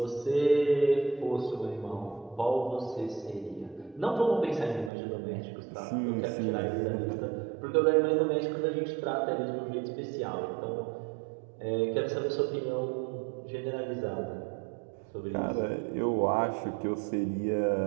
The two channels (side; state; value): left; drops out; at 4.9 s